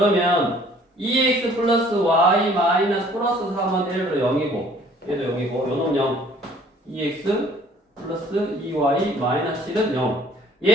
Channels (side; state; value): both; normal; correlation 0.56